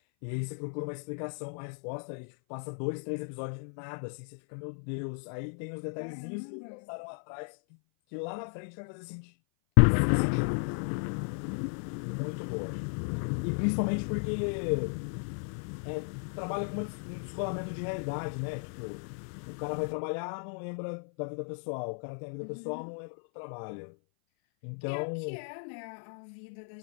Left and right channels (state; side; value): silent; right; 55 dB below the other